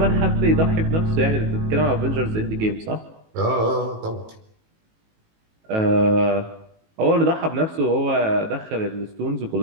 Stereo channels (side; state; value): left; late; 18 ms